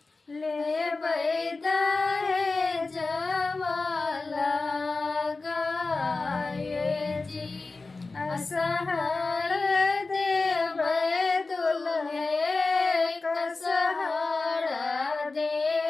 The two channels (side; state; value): right; quieter; 3.7 dB